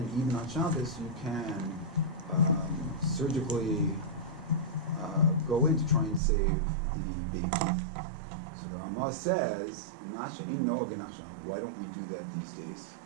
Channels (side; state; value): left; drops out; at 6.2 s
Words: even on Shabbos you can surgically go in to try and save the baby. So the Ramah says, why don't we do that these days?